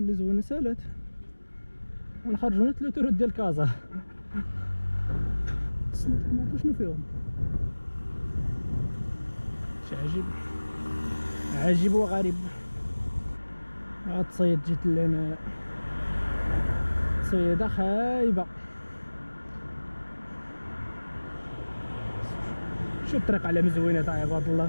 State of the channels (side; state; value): both; inverted; correlation -1.00